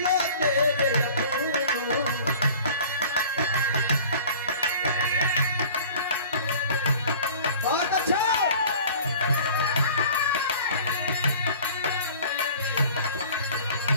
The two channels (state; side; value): inverted; both; correlation -0.45